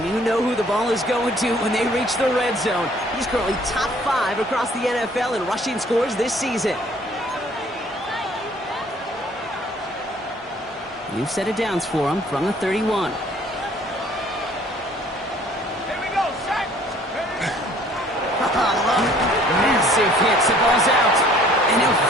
you know who the ball is going to when they reach the red zone. He's currently top 5 across the NFL in rushing scores this season. New set of downs for him from the 31. Here we go, set. Massive hits, the ball's out. And he'll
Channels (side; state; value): both; normal; correlation 0.57